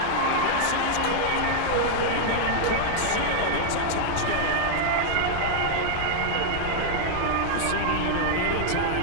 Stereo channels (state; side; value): different; both; correlation -0.01